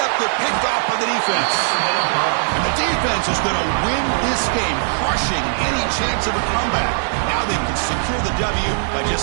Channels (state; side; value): silent; left; digital silence